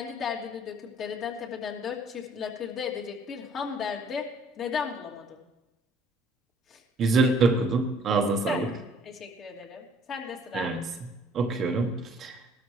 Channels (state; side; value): normal; both; correlation 0.58